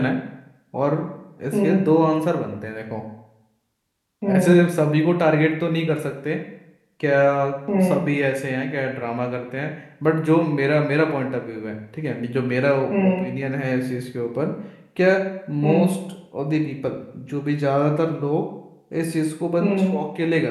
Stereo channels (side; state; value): both; identical; correlation 1.00